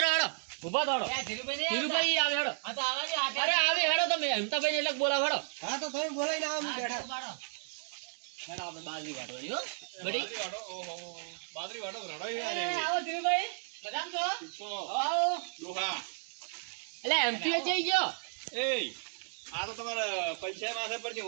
હેડો. ઉભા તો હેડો. ધીરુભાઈ આવે હેડો. આ તો આવાજો અરે આવી હેડો તમે હેમતાભાઈ ને એટલે બોલાવ હેડો. હા તો તમે બોલાઈને આવો હું બેઠા. હેડો આપણે બાજરી કાઢવાની હો. બડી બાદરી વાટો ઓહો બાદરી વાટો રડો એ યાર આવો ધીરુભાઈ મજામ છો? તો આવો. દોહા એટલે એમપી જઈ ગયો. એ આ તો તમારા પૈસા માથે પર છે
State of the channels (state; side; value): silent; left; digital silence